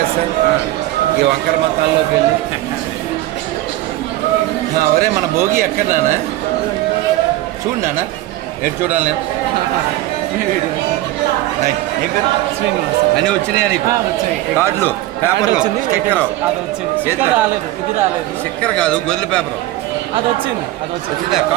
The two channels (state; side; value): quieter; left; 16.2 dB